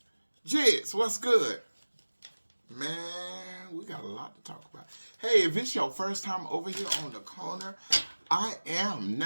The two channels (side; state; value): both; inverted; correlation -1.00